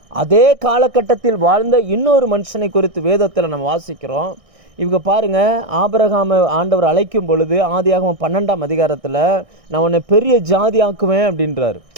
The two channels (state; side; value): late; left; 1.6 ms